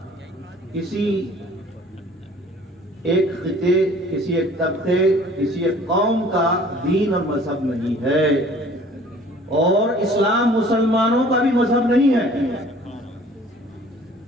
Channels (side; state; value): both; normal; correlation 0.51